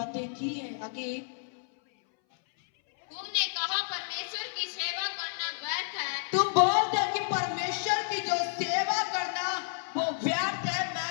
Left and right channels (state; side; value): silent; right; 57 dB below the other